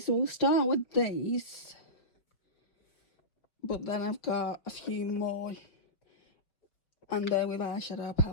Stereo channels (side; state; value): right; late; 5.6 ms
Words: we'll start with these. But then I've got a few more, and they're with eyeshadow